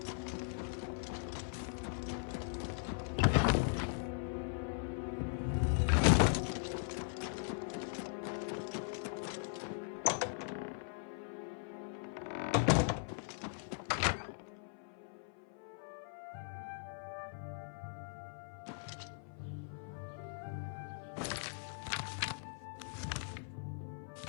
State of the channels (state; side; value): silent; right; 51 dB below the other